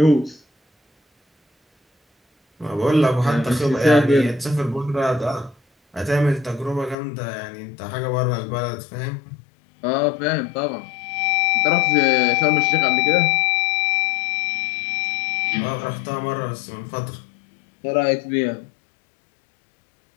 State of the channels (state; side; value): drops out; right; at 7.0 s